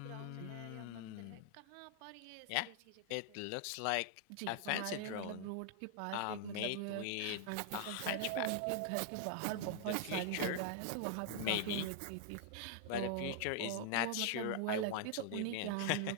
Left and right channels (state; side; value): different; both; correlation 0.00